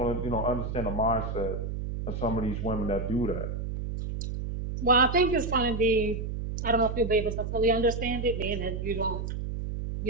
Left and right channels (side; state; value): right; noise; hum, 4 dB below the sound